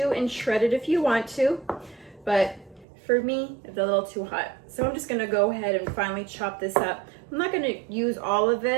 and shred it if you want to, but for me, it's a little too hot. So I'm just gonna go ahead and finely chop this up. I'm not gonna use all of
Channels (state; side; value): drops out; left; at 2.9 s